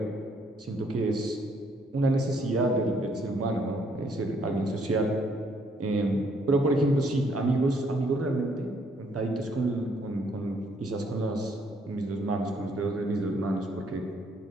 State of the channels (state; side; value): normal; both; correlation 0.68